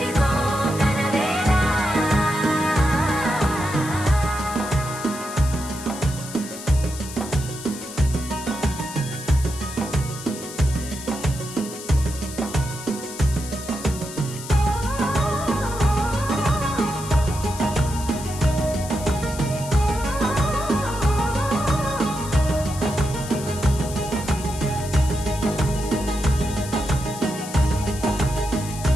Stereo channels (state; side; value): noise; left; hiss, 12 dB below the sound